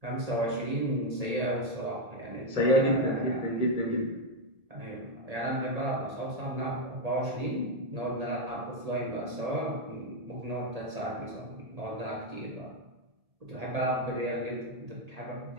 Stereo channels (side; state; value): left; late; 1.8 ms